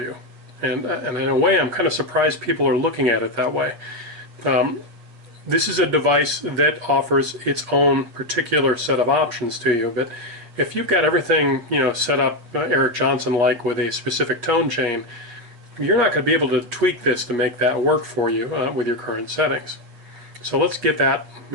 And in a way, I'm kind of surprised people are looking at it that way. This is a device that offers its own particular set of options to you, but if you've got everything, set up Eric Johnson-like with a specific tone chain, you're not going to be able to tweak this to make that work for you with your current settings. So let's get that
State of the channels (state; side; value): late; left; 8.5 ms